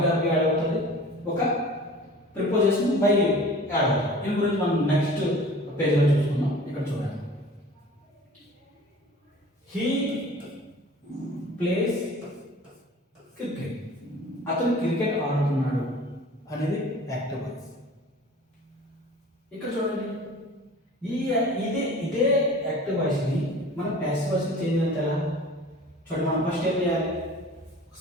వెర్బ్ యాడ్ అవుతుంది, ఒక ప్రిపోజిషన్ బై యాడ్ అవుతుంది. దీని గురించి మనం నెక్స్ట్ పేజ్లో చూసుకుందాం. ఇక్కడ చూడండి, హీ ప్లేస్ క్రికెట్, అతను క్రికెట్ ఆడుతున్నాడు అనేది యాక్టివ్ వాయిస్. ఇక్కడ చూడండి, ఇదే యాక్టివ్ వాయిస్ని మనం ప్యాసివ్ వాయిస్ని చేంజ్ చేస్తే ఎలా చూడండి. మనం ఫస్ట్ ఏం చేయాలి,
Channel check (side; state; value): both; normal; correlation 0.44